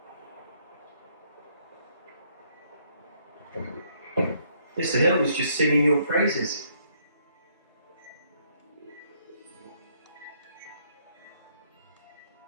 Mr. Hill was just singing your praises.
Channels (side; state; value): both; inverted; correlation -0.69